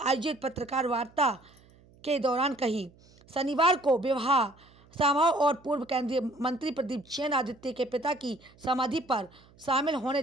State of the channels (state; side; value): noise; right; hum, 28 dB below the sound